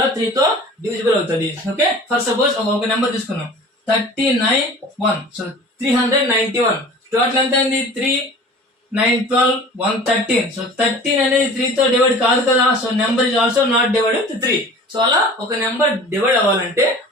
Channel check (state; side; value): normal; both; correlation 0.42